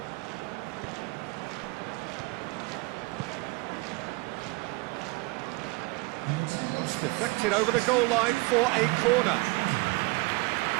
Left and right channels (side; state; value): left; quieter; 25.1 dB